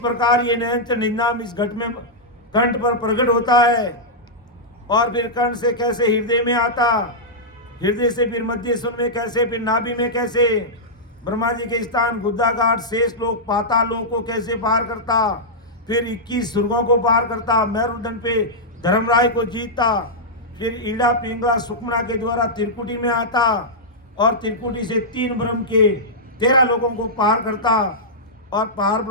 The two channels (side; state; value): both; normal; correlation -0.10